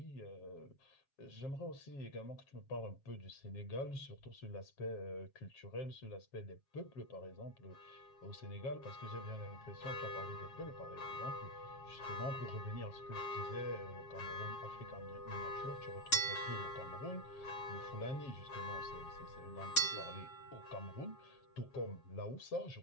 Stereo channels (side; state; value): right; late; 7.3 ms